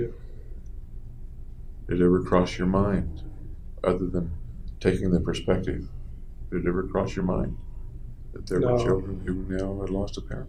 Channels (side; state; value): both; identical; correlation 1.00